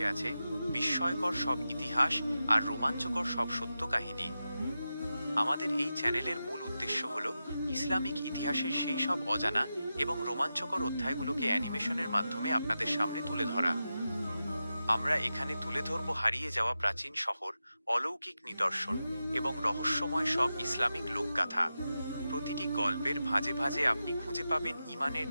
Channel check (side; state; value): both; inverted; correlation -0.91